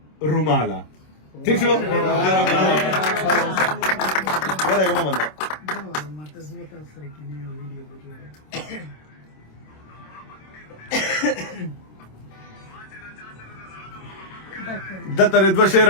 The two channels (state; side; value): late; right; 26 ms